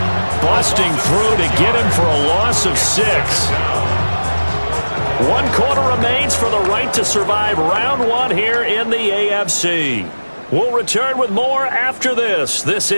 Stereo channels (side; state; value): both; inverted; correlation -1.00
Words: busting through to get him for a loss of 6. 1 quarter remains for the right to survive round 1 here in the AFC. We'll return with more after this. This